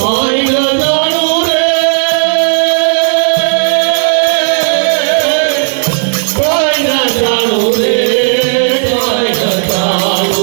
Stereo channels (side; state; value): left; silent; digital silence